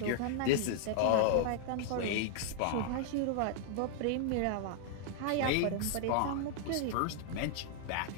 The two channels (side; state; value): both; different; correlation -0.01